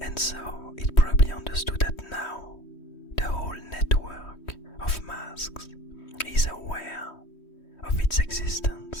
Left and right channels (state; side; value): late; right; 3.1 ms